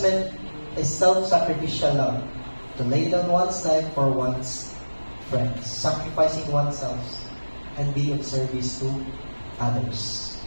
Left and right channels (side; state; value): both; inverted; correlation -1.00